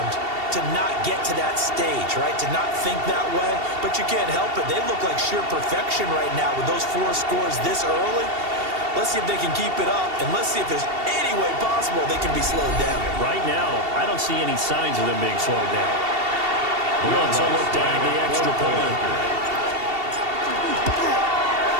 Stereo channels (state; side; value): late; left; 2.7 ms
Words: to not get to that stage, right? To not think that way, but you can't help it. They look like sheer perfection right now with those 4 scores this early. Let's see if they can keep it up, and let's see if there's any way possible they can be slowed down. Right now, I don't see any signs of them being slowed down. Wants a look down the extra point.